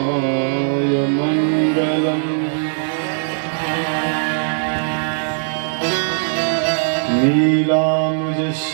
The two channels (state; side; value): silent; left; 64 dB below the other